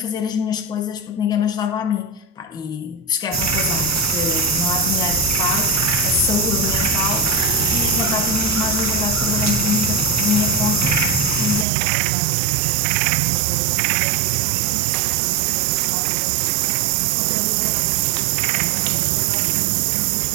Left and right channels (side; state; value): left; drops out; at 11.7 s